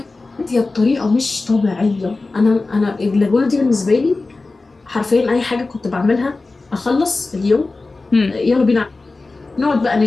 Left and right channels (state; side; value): quieter; right; 3.5 dB